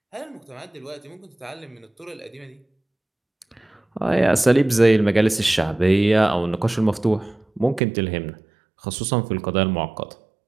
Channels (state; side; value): drops out; left; at 7.8 s